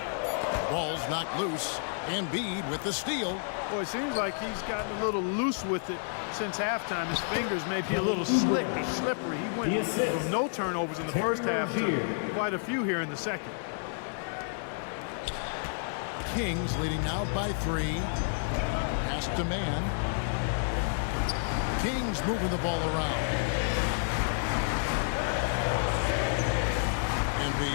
Ball's knocked loose. Embiid with the steal. Boy, it seems like he's gotten a little loose with it since halftime. His fingers may be a little slick or slippery. He went from no turnovers in the first half to quite a few here in the second. Kings leading now by 3. Pass to man. Kings moving the ball around.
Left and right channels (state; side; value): silent; right; digital silence